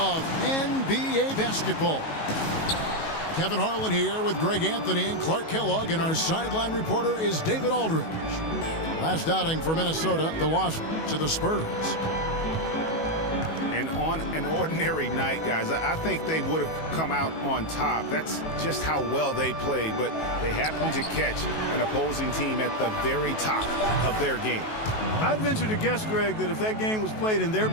NBA basketball. Kevin Harlan here with Greg Anthony and Clark Kellogg, and our sideline reporter is David Aldridge. Last outing for Minnesota, the loss to the Spurs. And on an ordinary night, guys, I think they would have come out on top. That's just how well they played, but they happened to catch an opposing team at the very top of their game. I'd venture to guess, Greg, that if that game was played in their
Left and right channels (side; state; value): right; late; 19 ms